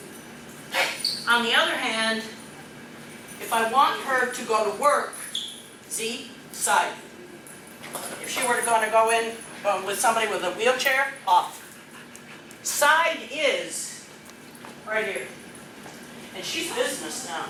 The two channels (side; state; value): both; identical; correlation 1.00